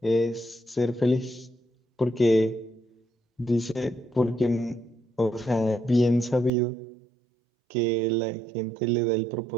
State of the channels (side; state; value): left; drops out; at 6.5 s